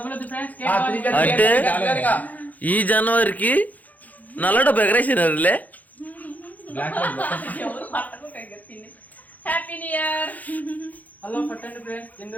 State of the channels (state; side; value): late; right; 0.080 ms